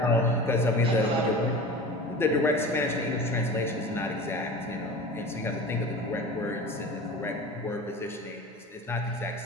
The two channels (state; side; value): normal; both; correlation 0.35